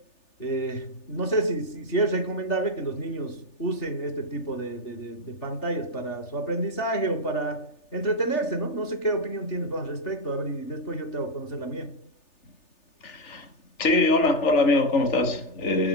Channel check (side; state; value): right; late; 3.4 ms